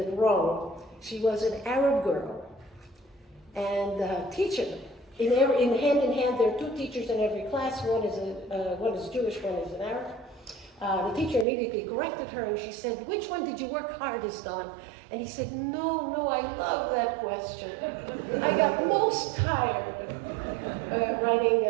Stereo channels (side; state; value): left; drops out; at 11.5 s